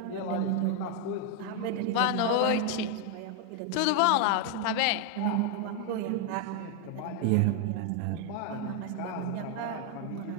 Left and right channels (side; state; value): both; different; correlation 0.00